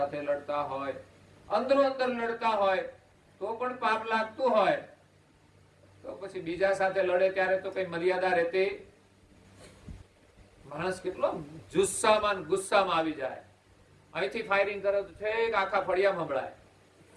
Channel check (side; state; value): both; identical; correlation 1.00